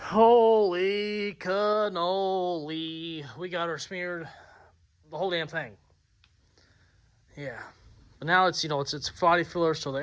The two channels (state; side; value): identical; both; correlation 1.00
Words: Holy cannoli. We got her smeared, the whole damn thing. Yeah. But now it's, it's body filler, so the